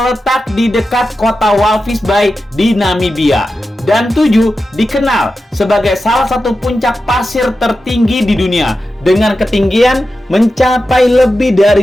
di dekat kota Walvis Bay di Namibia. Dan 7 dikenal sebagai salah satu puncak pasir tertinggi di dunia dengan ketinggian mencapai lebih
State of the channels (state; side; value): normal; both; correlation 0.91